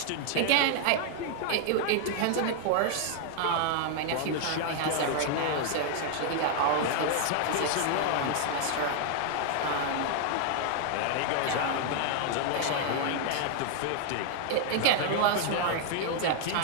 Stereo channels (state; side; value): different; both; correlation 0.00